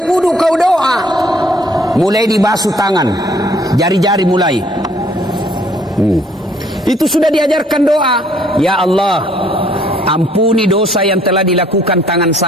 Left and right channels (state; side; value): normal; both; correlation 0.61